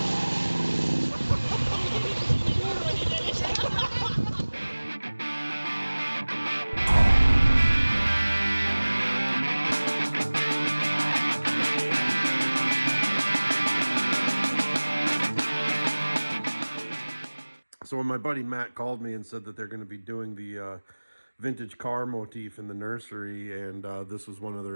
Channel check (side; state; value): both; inverted; correlation -1.00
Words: So when my buddy Matt called me and said that they're going to be doing the vintage car motif in the nursery, and this was one of